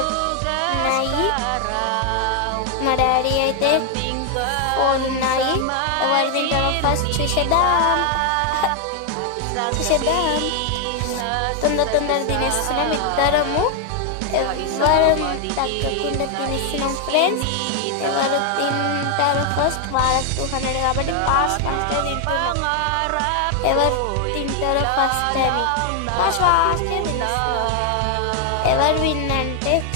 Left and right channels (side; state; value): both; different; correlation 0.00